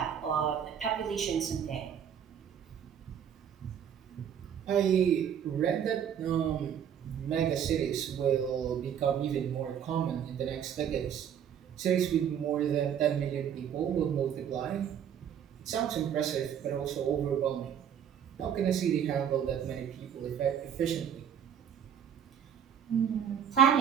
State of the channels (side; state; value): left; quieter; 8.8 dB